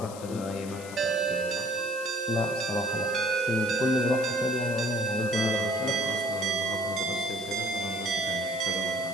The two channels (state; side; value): noise; left; hiss, 15 dB below the sound